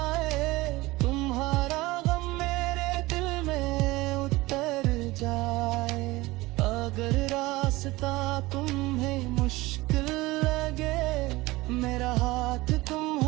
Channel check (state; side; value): quieter; left; 20.3 dB